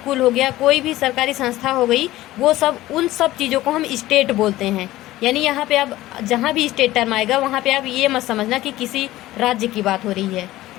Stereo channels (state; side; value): quieter; right; 16.3 dB